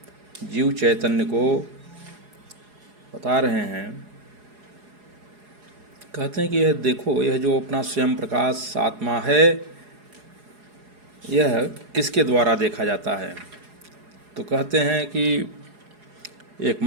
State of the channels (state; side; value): late; left; 4.8 ms